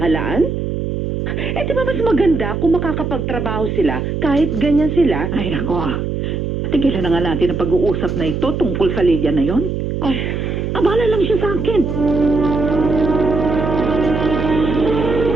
Di ba mas maganda kung makakapagtrabaho sila kahit ganyan sila? Ay nako. Tigilan na nga natin ang pag-uusap na ito tungkol sa Lydia na yon. Ay, Abala lang siya sa akin.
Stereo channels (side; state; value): right; noise; hum, 2 dB below the sound